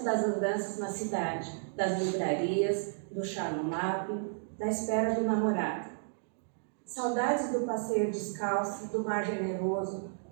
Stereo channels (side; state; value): left; silent; digital silence